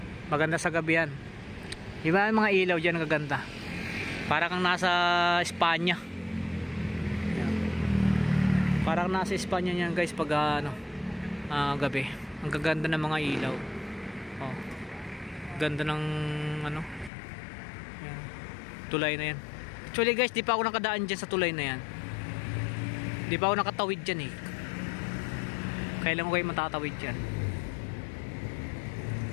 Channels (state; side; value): drops out; right; at 17.1 s